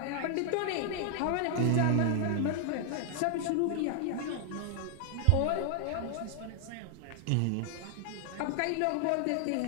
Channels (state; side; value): different; both; correlation 0.00